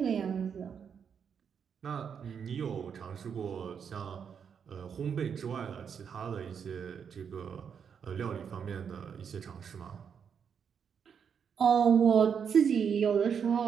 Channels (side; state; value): left; quieter; 7.1 dB